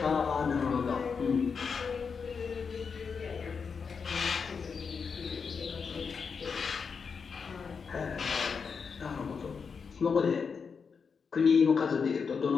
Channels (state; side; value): quieter; right; 5.7 dB